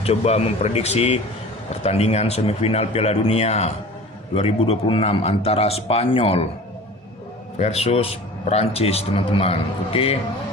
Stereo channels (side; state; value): both; normal; correlation 0.41